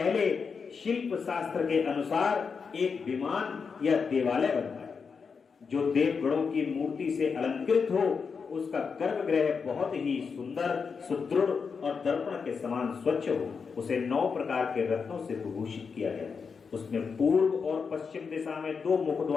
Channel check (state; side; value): quieter; right; 5.6 dB